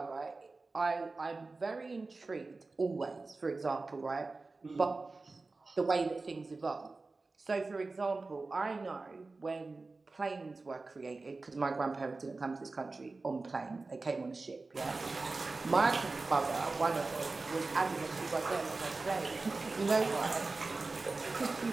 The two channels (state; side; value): quieter; left; 3.6 dB